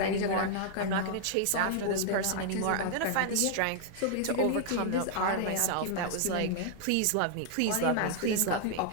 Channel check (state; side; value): different; both; correlation 0.00